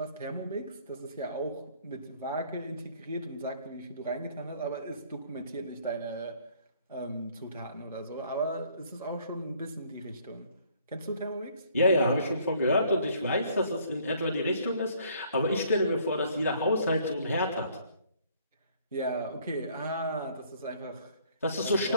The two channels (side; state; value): both; inverted; correlation -0.61